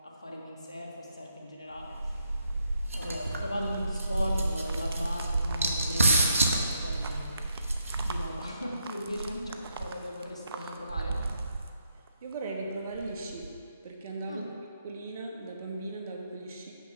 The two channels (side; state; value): both; inverted; correlation -0.76